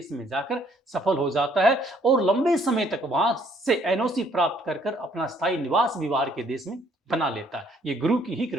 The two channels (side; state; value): both; normal; correlation 0.64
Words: में जाकर सफल हो जाता है और लंबे समय तक वहां से एनओसी प्राप्त कर अपना स्थायी निवास भी बाहर के देश में बना लेता है। ये गुरु की ही